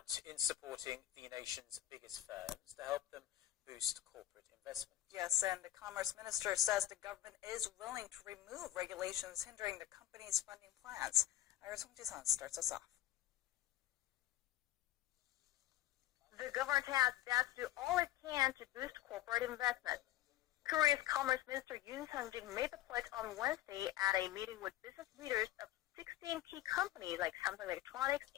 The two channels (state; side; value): quieter; right; 13.8 dB